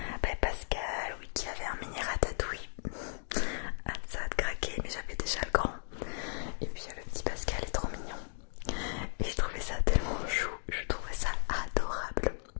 Pascal, oui, qui avait un mini ratatouille. Ah, ça a craqué, mais j'avais déjà le grand. Et puis le petit Pascal est trop mignon. Et j'ai trouvé ça tellement chou, je trouvais ça adorable.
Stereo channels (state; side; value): silent; right; digital silence